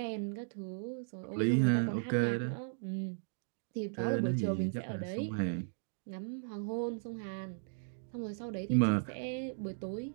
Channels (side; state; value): left; silent; digital silence